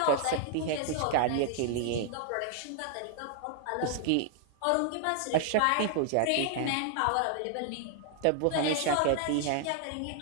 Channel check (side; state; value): both; different; correlation 0.00